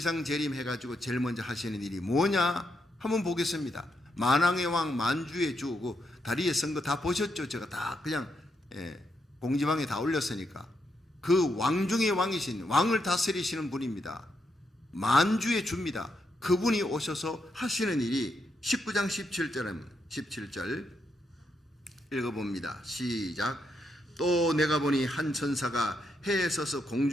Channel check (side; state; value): both; normal; correlation 0.81